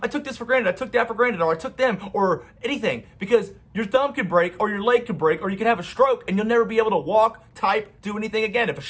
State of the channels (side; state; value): both; identical; correlation 1.00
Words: I took this for granted, I took that for granted, or I took them, or anything. Because your thumb could break, or your leg could break, or you could have a stroke, and you'll never be able to walk, type, do anything again. If a